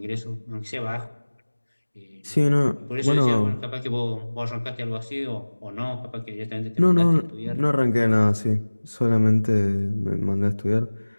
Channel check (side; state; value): both; inverted; correlation -1.00